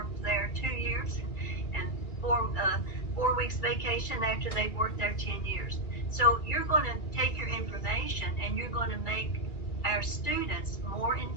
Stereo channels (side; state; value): right; late; 2.4 ms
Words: there 2 years, and 4 weeks vacation after they've worked there 10 years? So you're going to take your information and you're going to make our students more